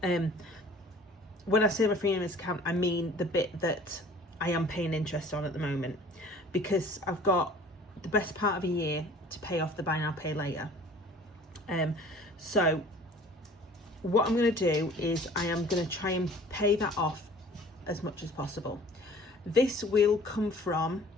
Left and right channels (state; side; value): normal; both; correlation 0.49